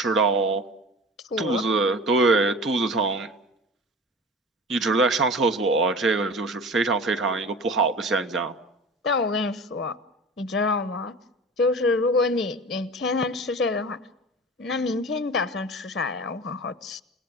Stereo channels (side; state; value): both; normal; correlation 0.36